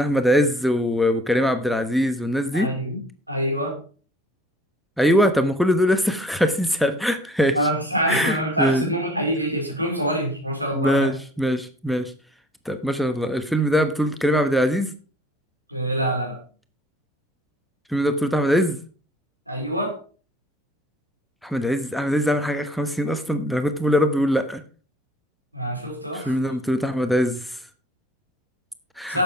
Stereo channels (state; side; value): normal; both; correlation 0.53